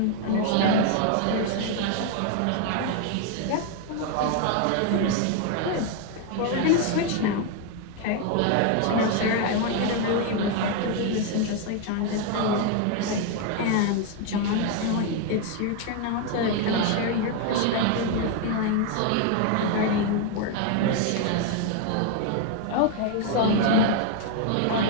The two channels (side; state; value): both; different; correlation 0.01